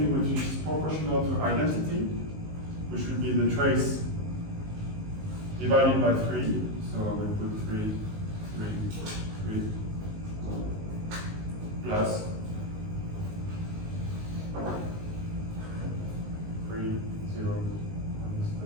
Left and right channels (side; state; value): left; late; 19 ms